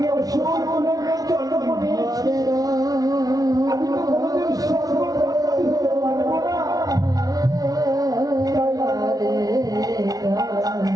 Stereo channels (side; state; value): left; late; 0.18 ms